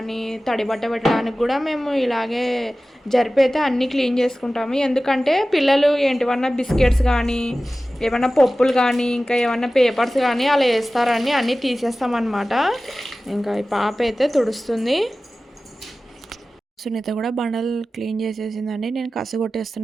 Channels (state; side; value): normal; both; correlation 0.96